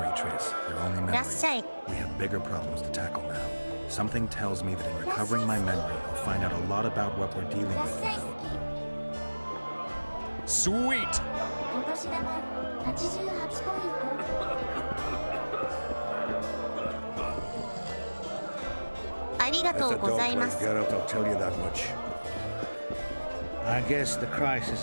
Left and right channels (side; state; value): both; inverted; correlation -1.00